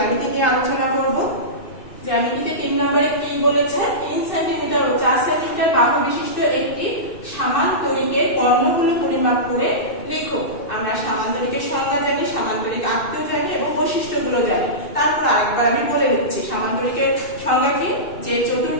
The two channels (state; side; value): late; right; 2.6 ms